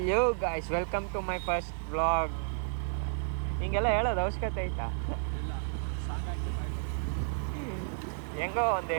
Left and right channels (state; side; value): silent; left; 57 dB below the other